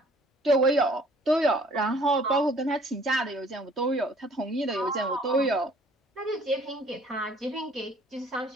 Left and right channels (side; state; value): both; normal; correlation 0.56